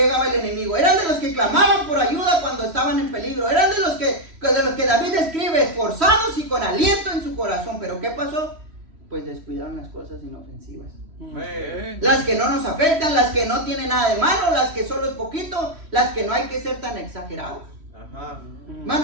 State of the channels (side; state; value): left; late; 3.1 ms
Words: el enemigo. Eran de los que clamaban por ayuda cuando estaban en peligro. Eran de los que David describe esforzados y con aliento en su corazón. Pero ¿qué pasó? Pues descuidaron las cosas inofensivas. Las que no nos afectan, las que no tienen nada de malo, las que solo es poquito, las que no hay que ser tan exagerados.